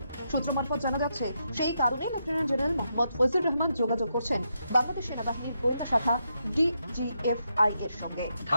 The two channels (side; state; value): both; inverted; correlation -0.82